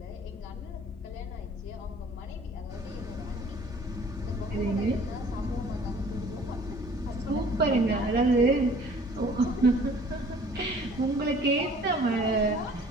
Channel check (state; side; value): normal; both; correlation 0.52